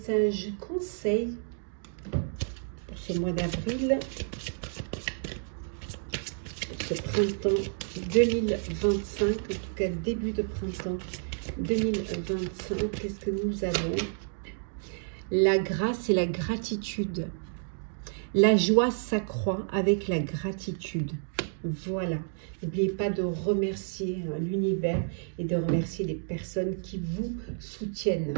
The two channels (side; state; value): left; silent; digital silence